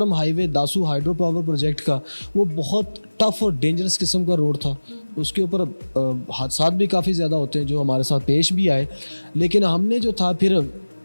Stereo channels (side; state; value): both; inverted; correlation -1.00